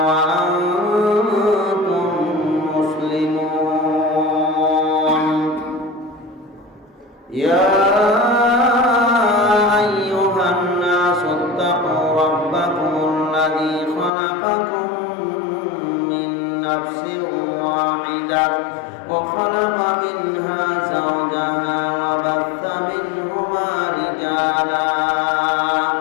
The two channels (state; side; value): drops out; right; at 14.1 s